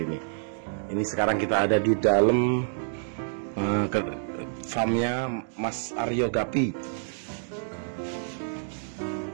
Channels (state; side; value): silent; left; digital silence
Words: sekarang kita ada di dalam farmnya Mas Aryo Gapi.